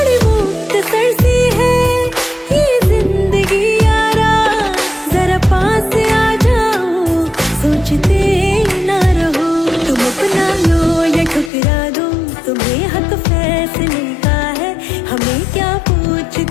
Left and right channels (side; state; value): right; drops out; at 11.5 s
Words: मुख्तसर सी है ये जिंदगी यारा, जरा पास आ जाओ सोचते ना रहो। तुम अपना लो या ठुकरा दो, तुम्हें हक फैसले का है, हमें क्या